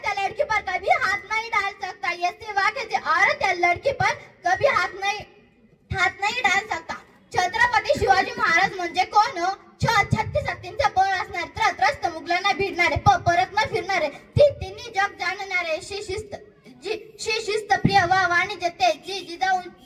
या लड़की पर कभी हाथ नहीं डाल सकता. ये सिवा किसी औरत या लड़की पर कभी हाथ नहीं डाल सकता. छत्रपती शिवाजी महाराज म्हणजे कोण? 36 हत्तींचा बळ असणारे, त्रस्त मुघलांना भिडणारे, परत न फिरणारे, तिन्ही जग जाणणारे, शिस्त प्रिय व वाणिज्य तेज,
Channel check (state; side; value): identical; both; correlation 1.00